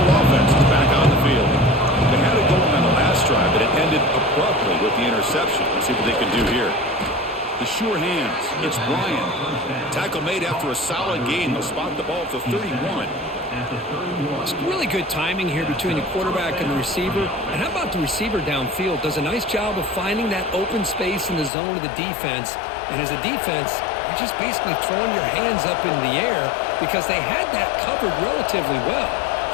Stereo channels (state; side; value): drops out; right; at 21.5 s